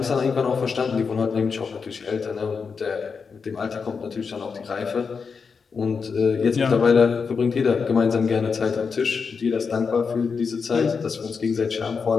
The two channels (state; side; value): quieter; right; 5.5 dB